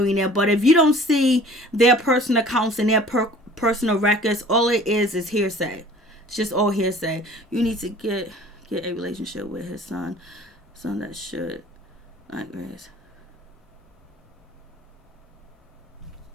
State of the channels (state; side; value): normal; both; correlation 0.48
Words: but if you don't see their personal accounts and their personal records, all it is hearsay. It's just all hearsay. You need to get a relationship with his son that should not grace.